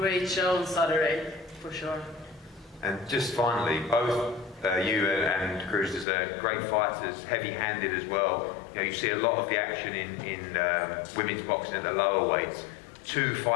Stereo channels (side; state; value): right; drops out; at 6.1 s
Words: show on Saturday, for sure. And just finally, both you and Cruz are great fighters, heavy-handed as well. You know, you see a lot of the action in women's boxing at the lower weights. 2